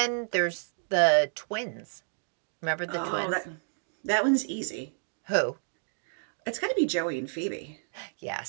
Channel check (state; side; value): silent; left; digital silence